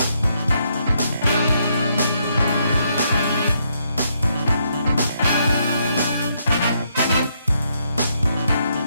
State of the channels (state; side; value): inverted; both; correlation -0.75